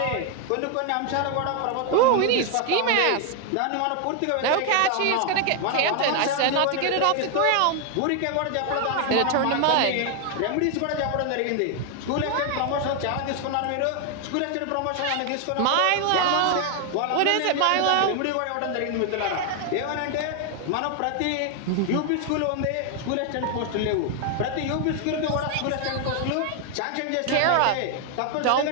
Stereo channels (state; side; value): different; both; correlation 0.01